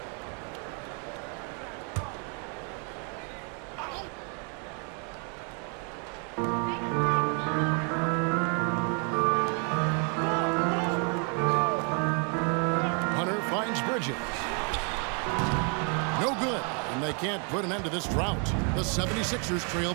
No good, and they can't put an end to this drought. The 76ers trail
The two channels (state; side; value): quieter; left; 38.7 dB